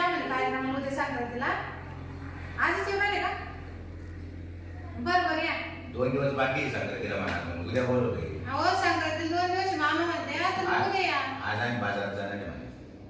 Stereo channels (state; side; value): identical; both; correlation 1.00